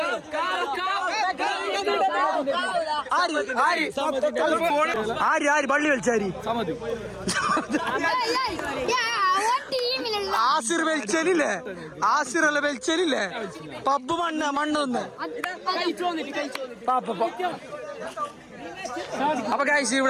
ആര് പള്ളി കളിച്ചാരി ആസിർ വലിച്ചലില്ലേ? ആസിറല്ല വലിച്ചലില്ലേ? പബ്ബ് മണ്ണൊന്ന്. അപ്പൊ ഗൈസ്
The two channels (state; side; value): identical; both; correlation 1.00